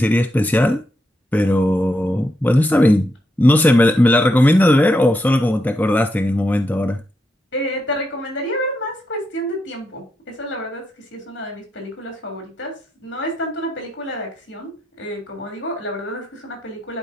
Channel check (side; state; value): both; normal; correlation 0.82